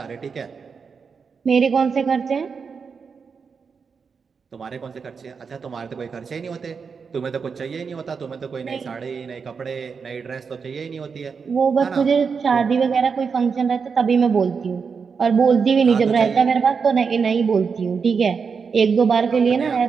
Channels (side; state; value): left; quieter; 5.7 dB